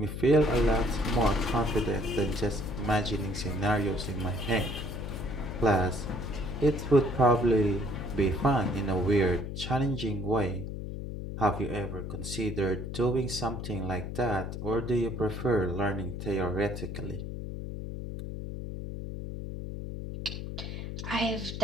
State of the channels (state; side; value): noise; left; hum, 6 dB below the sound